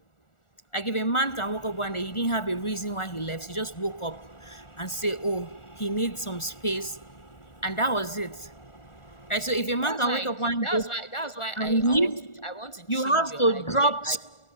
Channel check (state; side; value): late; right; 1.4 ms